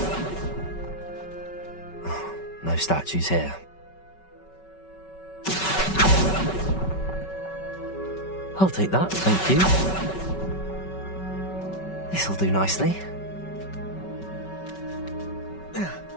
No statues here. I'll take that, thank you. This'll do nicely.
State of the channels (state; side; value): late; right; 5.3 ms